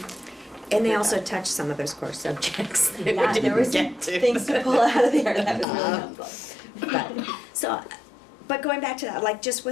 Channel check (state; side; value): drops out; right; at 5.7 s